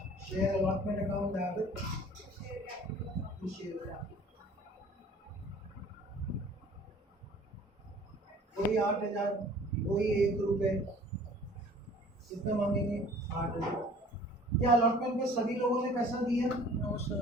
Share allotment account debit to share, कोई 8,000, कोई 1 रुपये, कितना मांगेंगे 8,000। क्या अलॉटमेंट में सभी लोगों ने पैसा दिया? No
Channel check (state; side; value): normal; both; correlation 0.50